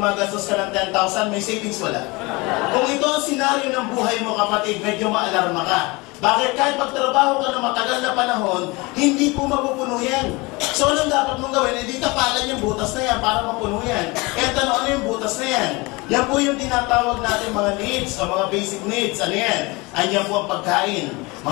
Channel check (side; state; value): right; quieter; 24.8 dB